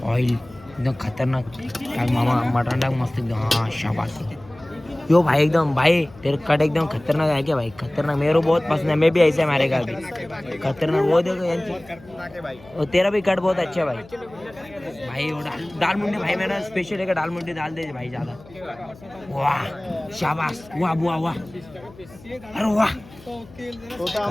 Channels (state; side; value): noise; left; hum, 22 dB below the sound